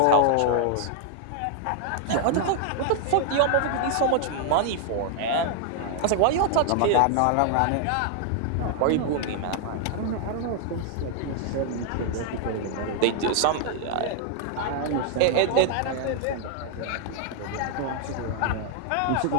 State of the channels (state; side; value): different; both; correlation 0.00